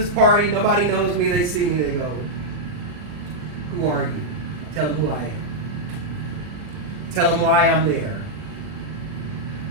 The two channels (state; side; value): late; left; 40 ms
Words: party, nobody knows me, they see me, they go, who are you? Tell them who I am. Tell them why I'm there.